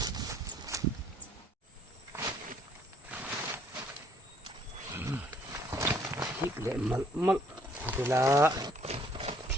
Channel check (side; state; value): both; normal; correlation 0.63